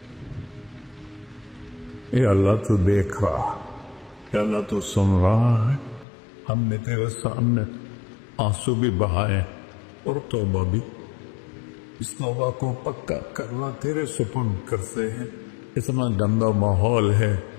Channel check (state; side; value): drops out; right; at 6.1 s